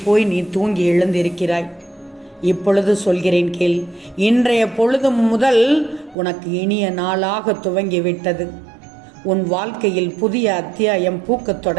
போய் நீ தூங்கி எழுந்திருக்கிறாய். இப்பொழுது சொல்கிறேன் கேள். இன்றைய பொழுது முதல் உனக்கு இனிய நாளாக துவங்கிவிட்டது. உன் வாழ்க்கையில் புதிய அத்தியாயம் பூக்கத்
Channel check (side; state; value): left; drops out; at 6.2 s